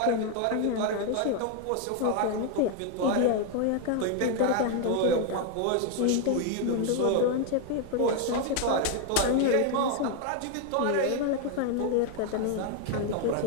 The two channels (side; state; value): both; different; correlation 0.01